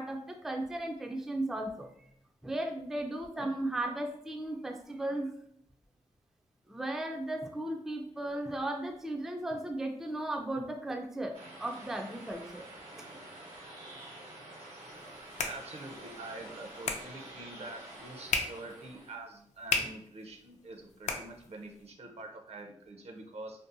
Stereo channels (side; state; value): both; normal; correlation 0.66